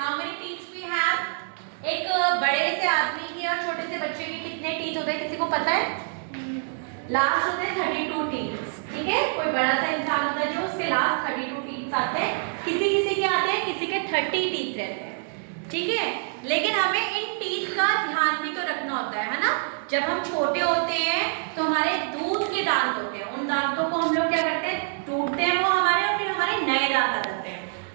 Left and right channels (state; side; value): silent; left; digital silence